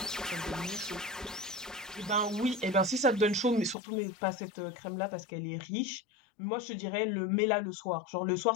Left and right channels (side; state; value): right; drops out; at 3.8 s